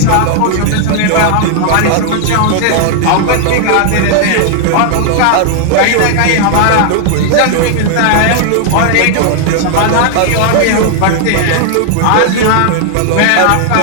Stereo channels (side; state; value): both; different; correlation 0.00